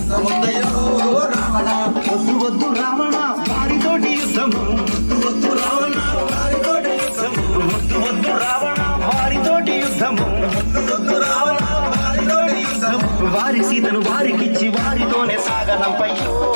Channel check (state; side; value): inverted; both; correlation -1.00